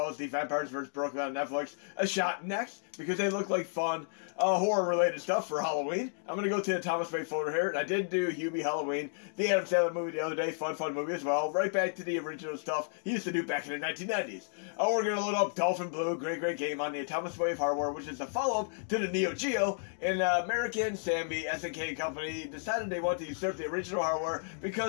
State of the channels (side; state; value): right; silent; digital silence